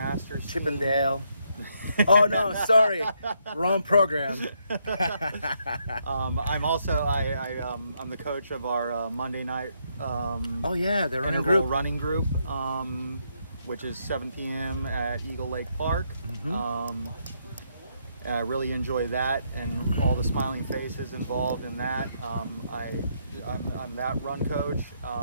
team. Chippendale. Oh no, sorry, wrong program. I'm also I'm the coach of our Monday night the running interval group. running group, which is 7 p.m. at Eagle Lake Park. And I really enjoy that, and all the smiling faces involved in that. I'm that run coach,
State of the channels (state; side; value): inverted; both; correlation -0.76